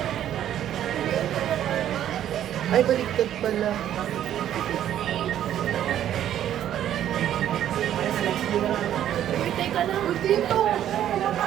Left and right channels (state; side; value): quieter; left; 11.1 dB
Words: Ay, baliktad pala. Uy, teka lang. Dito!